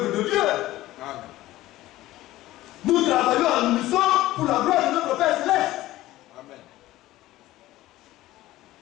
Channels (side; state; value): right; quieter; 16.2 dB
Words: de Dieu. Amen. Nous travaillons en unisson pour la gloire de notre Père Céleste. Amen.